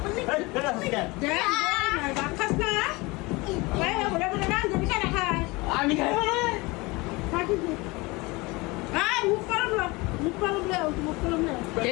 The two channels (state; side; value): quieter; right; 24.1 dB